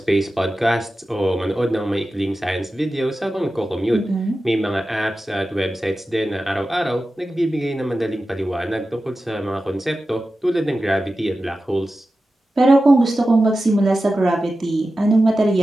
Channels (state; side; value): normal; both; correlation 0.93